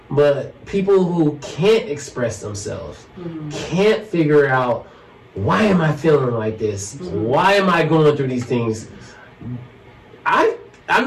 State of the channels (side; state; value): both; identical; correlation 1.00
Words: But people who can't express themselves, can't figure out, why am I feeling like this? Why am I going through these things? I'm